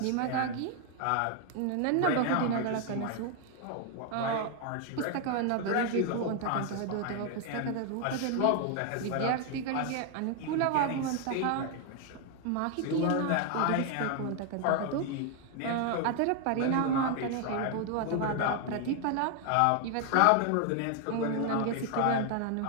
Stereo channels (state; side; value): different; both; correlation 0.00